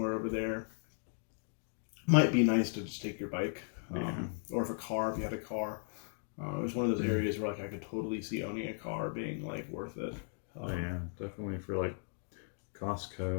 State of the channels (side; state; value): right; silent; 53 dB below the other